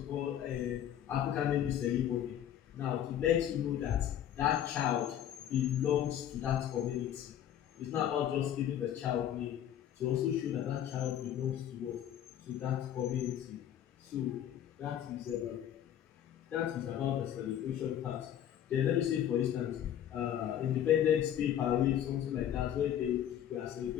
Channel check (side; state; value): right; quieter; 10.5 dB